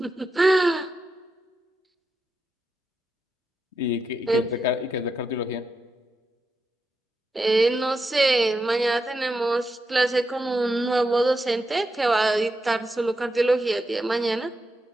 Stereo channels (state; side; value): normal; both; correlation 0.86